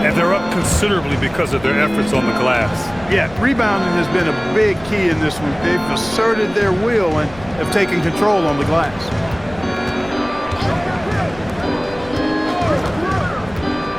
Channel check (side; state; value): left; noise; rumble, 19 dB below the sound